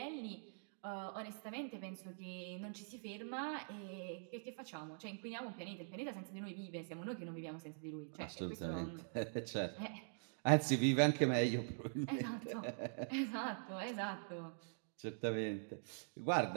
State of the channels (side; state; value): left; silent; digital silence